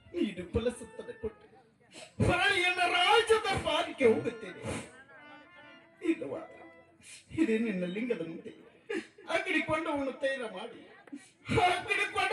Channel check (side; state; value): both; identical; correlation 1.00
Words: ನೀನು ಫಲಸತ್ತನೆ ಕೊಟ್ಟು ಹೊರಳಿಯನ್ನ ರಾಜ್ಯದ ಪಾಲಿಗೆ ಹೋಗುತ್ತೇನೆ. ಇಲ್ಲವಾದ ಇದೇ ನಿನ್ನ ಲಿಂಗದ ಮುಂದೆ ಅಗ್ನಿಕೊಂಡವನು ತೈಲ ಮಾಡಿ